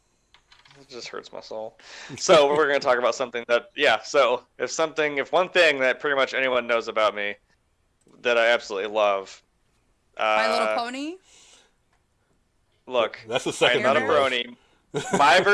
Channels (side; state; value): both; identical; correlation 1.00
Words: It just hurts my soul. So we're going to talk about something that, so if one thing that pretty much anyone knows about me that I absolutely love. My Little Pony? Look, that's the second. I'm not a brony. My